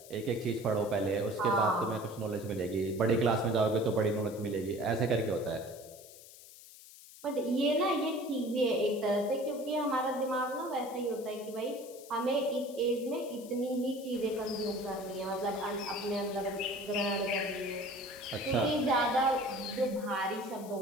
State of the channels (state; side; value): noise; left; hiss, 19 dB below the sound